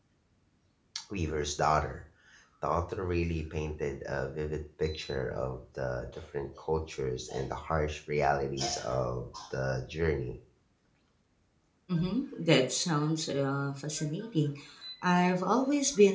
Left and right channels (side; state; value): both; identical; correlation 1.00